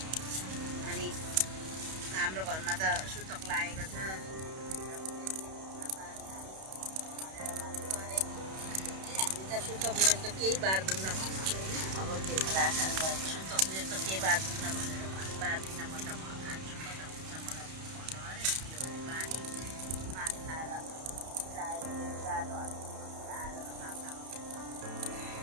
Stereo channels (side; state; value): left; late; 31 ms